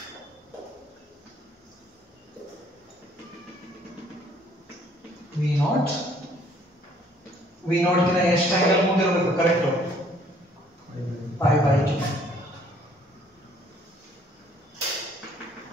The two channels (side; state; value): both; normal; correlation 0.61